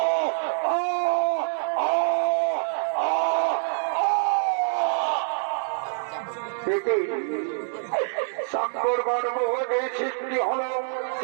সাক্ষর গর্ভে সৃষ্টি হল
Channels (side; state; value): left; silent; digital silence